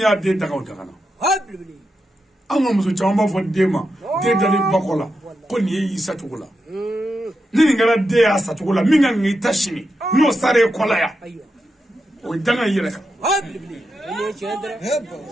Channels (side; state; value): both; normal; correlation 0.86